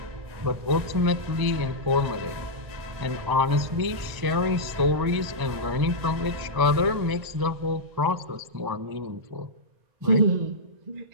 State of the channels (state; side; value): late; left; 1.1 ms